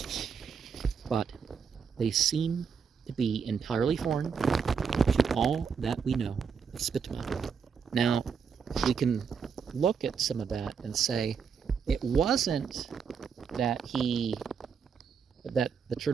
but they seem to be entirely foreign to all that we know of Spitama. Now, we can look at some of that and say it wasn't that the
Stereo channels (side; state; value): left; quieter; 6.4 dB